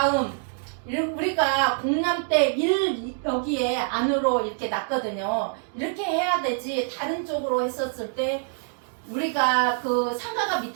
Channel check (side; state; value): left; silent; digital silence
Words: 우리가 공람 때 1 여기에 안으로 이렇게 놨거든요. 이렇게 해야 되지, 다른 쪽으로 했었을 때 우리가 그 상가가